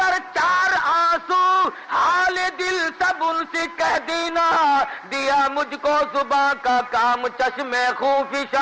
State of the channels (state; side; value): identical; both; correlation 1.00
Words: 4 آنسو حال دل سب ان سے کہہ دینا، دیا مجھ کو زباں کا کام چشم